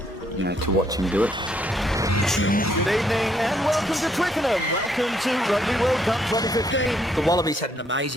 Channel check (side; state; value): both; normal; correlation 0.71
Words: to watch him do it. Good evening and welcome to Twickenham. Welcome to Rugby World Cup 2015. The Wallabies had an